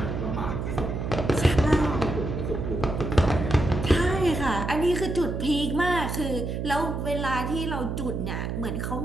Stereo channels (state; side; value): noise; right; hum, 3 dB below the sound